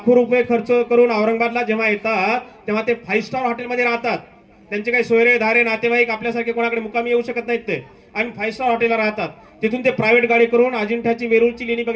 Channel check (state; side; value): identical; both; correlation 1.00